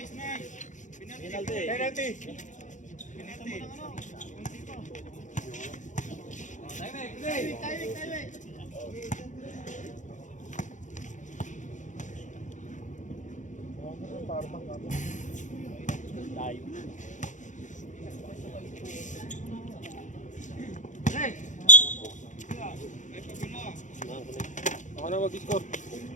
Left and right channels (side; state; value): right; late; 0.36 ms